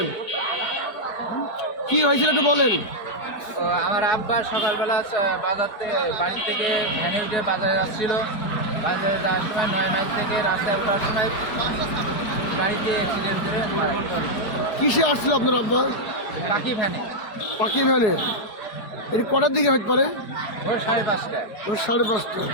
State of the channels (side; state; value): right; late; 4.8 ms